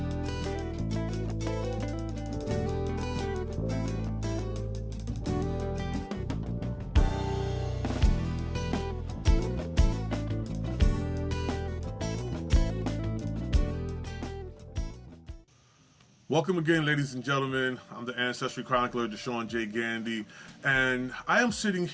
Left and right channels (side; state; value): both; identical; correlation 1.00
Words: Welcome again, ladies and gentlemen. I'm the Ancestry Chronicler, Deshaun J. Gandy, and I am sitting